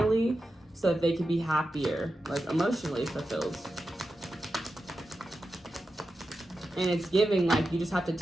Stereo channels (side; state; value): both; normal; correlation 0.91